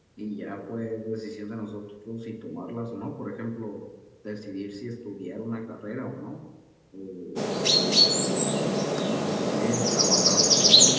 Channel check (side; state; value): both; identical; correlation 1.00